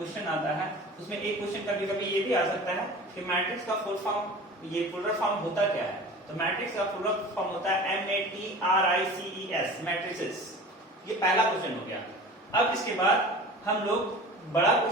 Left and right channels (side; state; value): both; normal; correlation 0.39